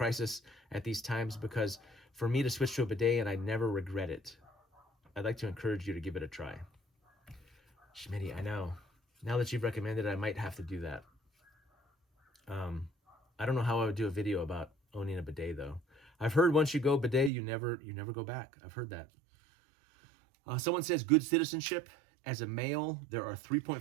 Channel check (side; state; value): left; drops out; at 17.3 s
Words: at these times, because for me to switch to a bidet and I never regret it. I'd like to encourage you to give it a try. Schmitty, I know. Now that you've recommended it, I might have to do that. I don't know how I would do a video about owning a bidet though. I've heard once you go bidet, you never go back. I've heard that. Someone says good citizenship. As a male, there are